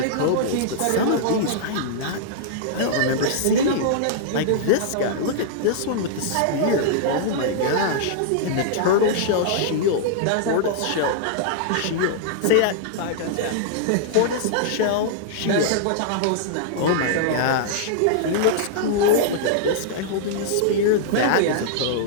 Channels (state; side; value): different; both; correlation -0.02